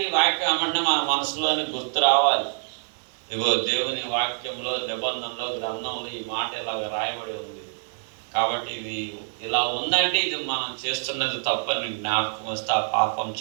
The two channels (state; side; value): silent; left; 61 dB below the other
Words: ఈ వాక్యం ఏమంటే మన మనసులోని గుర్తు రావాలి. ఇగో దేవుని వాక్యంలో, నిబంధనలో, గ్రంథంలో ఈ మాట ఇలాగ రాయబడి ఉంది కాబట్టి ఇది ఇలా ఉందంటే ఇది మనం చేస్తున్నది తప్పని జ్ఞాపకం వస్తే ఆ పాపం